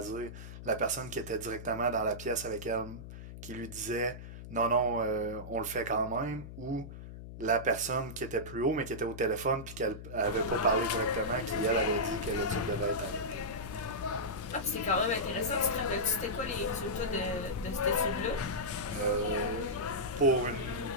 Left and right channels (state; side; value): noise; left; hum, 12 dB below the sound